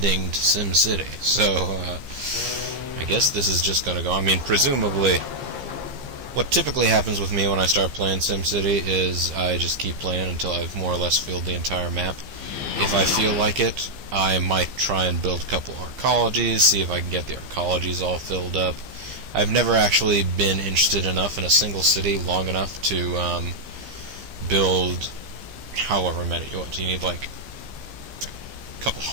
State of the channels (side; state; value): left; late; 15 ms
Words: to SimCity, so, I guess this is just gonna go. I mean, presumably, what typically happens with me when I start playing SimCity is I just keep playing until I've more or less filled the entire map. If I feel like it, I might try and build a couple arcologies, see if I can get the arcologies all filled up. I've never actually been interested enough in a single city long enough to build however many. What, do you need, a couple